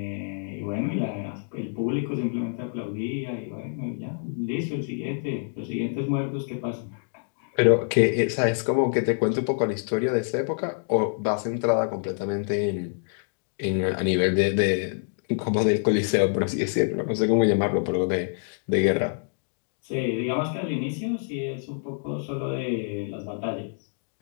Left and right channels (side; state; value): right; silent; digital silence